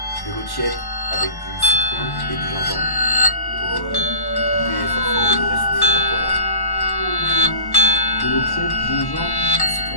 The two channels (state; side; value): late; right; 1.1 ms